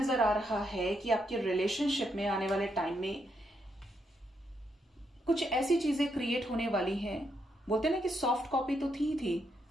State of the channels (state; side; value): normal; both; correlation 0.79